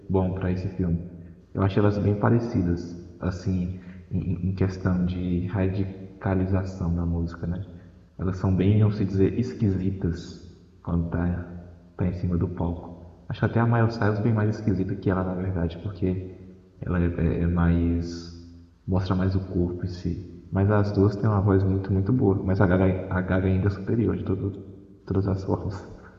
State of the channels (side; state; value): both; identical; correlation 1.00